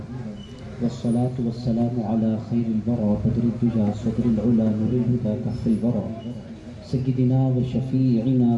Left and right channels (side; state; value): both; identical; correlation 1.00